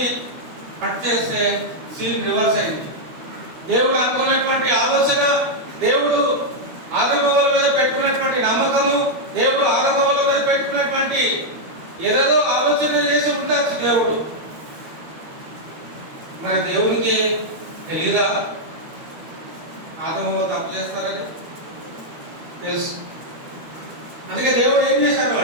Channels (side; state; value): left; late; 12 ms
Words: కట్ చేస్తే సీన్ రివర్స్ అయింది. దేవుడు అనుకున్నటువంటి ఆలోచన, దేవుడు ఆదాము మీద పెట్టుకున్నటువంటి నమ్మకము, దేవుడు ఆదాము మీద పెట్టుకున్నటువంటి ఏదేదో ఆలోచన చేసి ఉండొచ్చు దేవుడు. మరి దేవునికి తెలీదా ఆదాము తప్పు చేస్తారని? తెలుసు. అందుకే దేవుడు ఏం చేశాడు